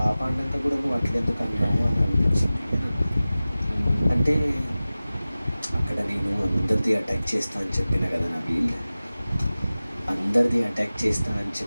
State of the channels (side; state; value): both; inverted; correlation -0.97